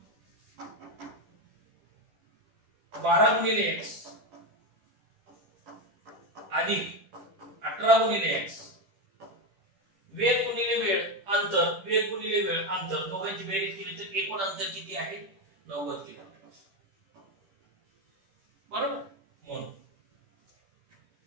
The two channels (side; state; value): left; late; 10 ms